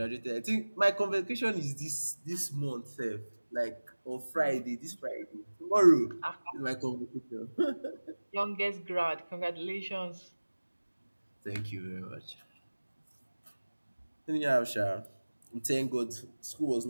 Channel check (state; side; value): inverted; both; correlation -1.00